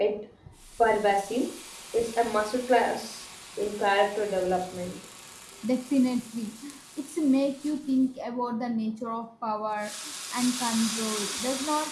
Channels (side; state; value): both; identical; correlation 1.00